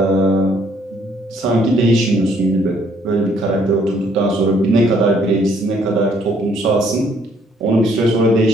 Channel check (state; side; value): normal; both; correlation 0.65